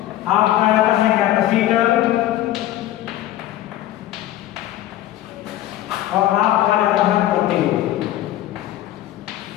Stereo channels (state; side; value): quieter; right; 13.8 dB